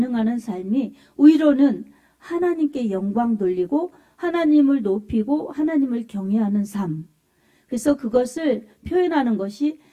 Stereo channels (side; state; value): both; identical; correlation 1.00